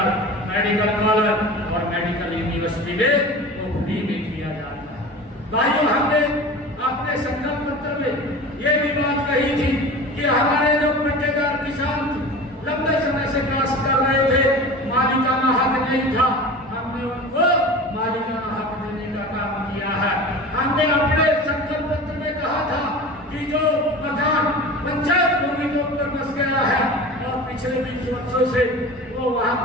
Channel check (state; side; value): normal; both; correlation 0.34